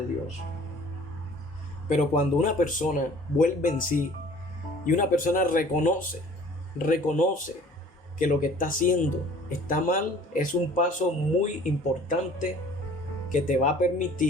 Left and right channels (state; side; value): normal; both; correlation 0.50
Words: Dios. Pero cuando una persona vuelve en sí y una persona reconoce que lo que está haciendo está mal, es un paso muy importante que te va a